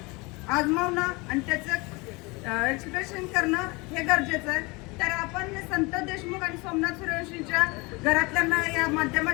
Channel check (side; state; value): right; quieter; 26.0 dB